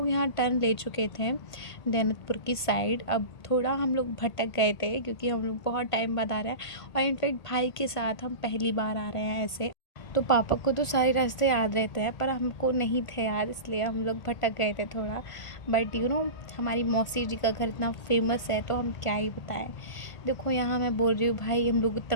यहाँ टर्न ले चुके थे दैनतपुर की साइड। अब थोड़ा हम लोग भटक गए थे क्योंकि हम लोग बहुत टाइम बाद आ रहे हैं, और इनफेक्ट भाई के साथ हम पहली बार आ रहे हैं ऐसे। तो पापा को तो सारे रास्ते याद रहते हैं, पर हमको नहीं थे याद, इसलिए हम लोग भटक गए थे थोड़ा। बट हमारी मौसी जी का घर इतना फेमस है, तो हम क्या ही बताएं। देखो यहाँ मैं बोल रही हूँ भाई, हम लोग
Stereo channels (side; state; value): right; late; 1.5 ms